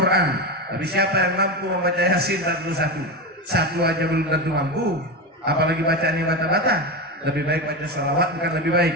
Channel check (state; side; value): normal; both; correlation 0.18